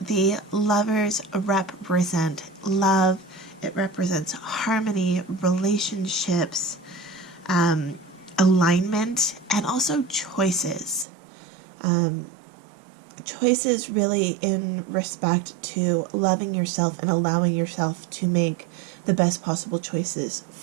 Lovers represent love. It represents harmony, relationships, alignment, and also choices. Choices really in respect to loving yourself and allowing yourself to make the best possible choices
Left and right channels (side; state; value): left; drops out; at 11.1 s